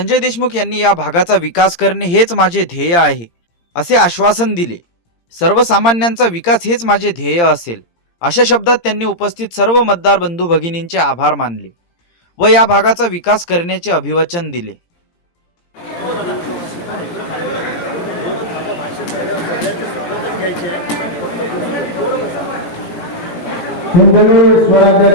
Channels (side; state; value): right; late; 17 ms